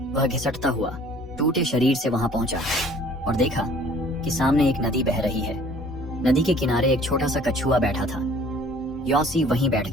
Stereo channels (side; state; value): both; normal; correlation 0.53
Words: वह घिसटता हुआ टूटे शरीर से वहां पहुंचा और देखा कि सामने एक नदी बह रही है। नदी के किनारे एक छोटा सा कछुआ बैठा था। यॉसी वहीं बैठ